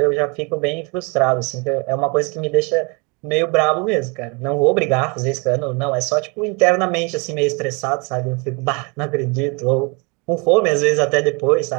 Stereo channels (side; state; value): left; quieter; 31.3 dB